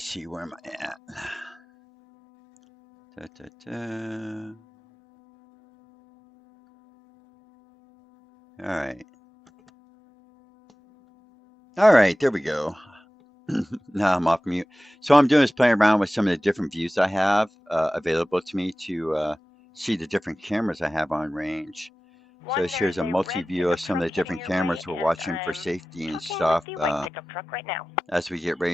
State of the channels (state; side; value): normal; both; correlation 0.96